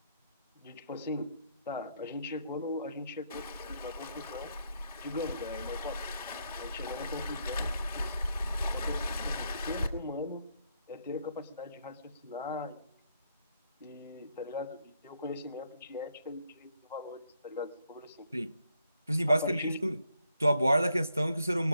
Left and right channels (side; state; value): both; inverted; correlation -0.75